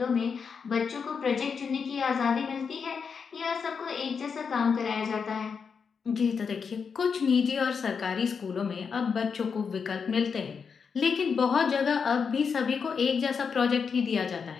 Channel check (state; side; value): quieter; right; 6.0 dB